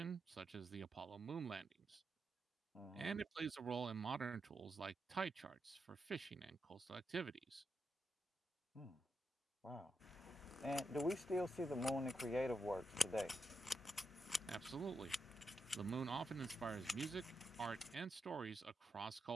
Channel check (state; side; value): normal; both; correlation 0.84